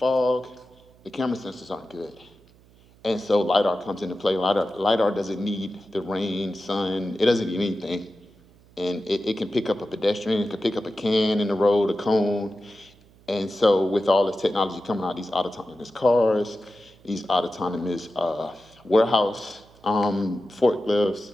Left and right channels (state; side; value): noise; right; hum, 28 dB below the sound